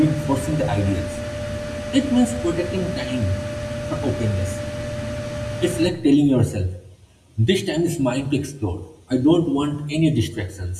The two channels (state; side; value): identical; both; correlation 1.00